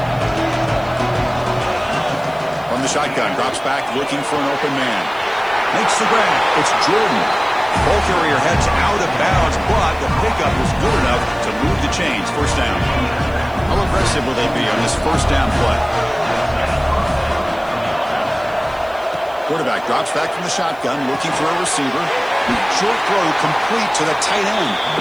From the shotgun, drops back looking for an open man. Makes the grab. It's Jordan. Ball carrier heads out of bounds, but the pickup is good enough to move the chains. 1st down. How aggressive will they be on this 1st down play? Quarterback drops back from the shotgun, looking for a receiver. The short throw complete to the tight end.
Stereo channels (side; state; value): right; noise; hiss, 27 dB below the sound